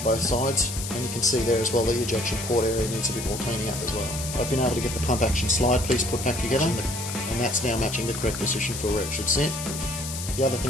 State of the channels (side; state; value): left; noise; hiss, 7 dB below the sound